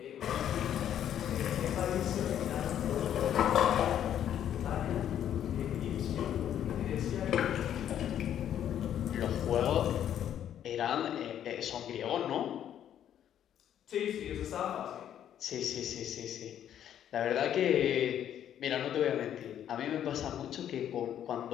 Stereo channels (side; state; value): right; quieter; 10.3 dB